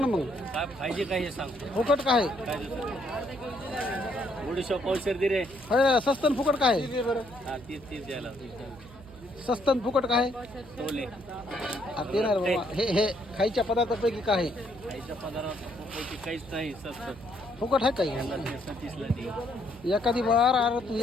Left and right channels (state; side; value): noise; right; hum, 20 dB below the sound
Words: मग काय पाहिजे काय हे सांग. फुकट काय काय थोडीशा पावशेर दे रे. आहे? स्वस्त आणि फुकट काय आहे? हा तीच तीच द्यायला स्वस्त आणि फुकट काय आहे? टोले ते नाही रे बाबा. हे खायच्या पदार्थापैकी काय आहे? खायच्या पदार्थापैकी काहीच नाही स्वस्त. फुकट आहे काही? 37 ला दे. एखादी बार अरे तू